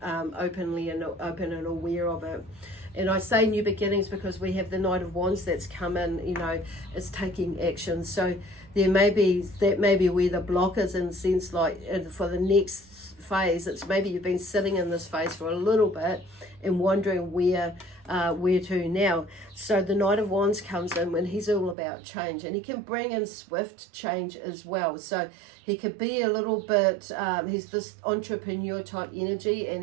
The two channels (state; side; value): drops out; left; at 21.8 s